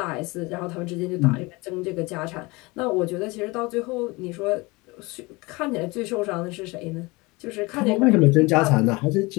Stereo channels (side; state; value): right; quieter; 24.3 dB